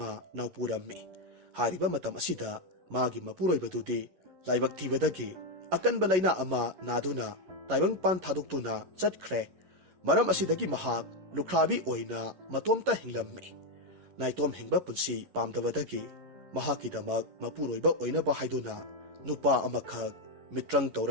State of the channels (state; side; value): late; left; 11 ms